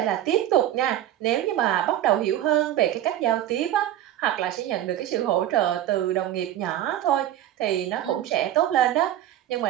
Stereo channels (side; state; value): left; quieter; 12.3 dB